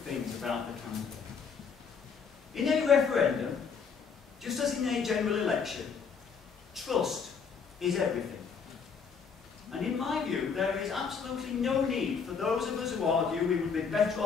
about the candidate. In a referendum, just as in a general election, trust is everything. And in my view, there is absolutely no need for those of us who argue we would be better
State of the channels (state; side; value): quieter; right; 6.0 dB